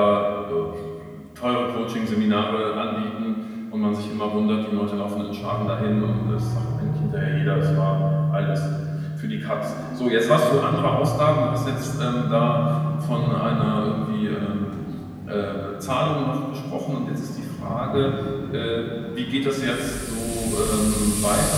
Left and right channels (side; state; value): both; identical; correlation 1.00